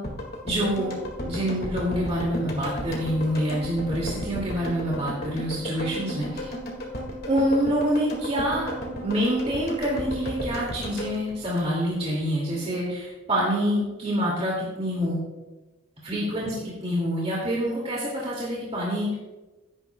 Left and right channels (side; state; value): both; normal; correlation 0.55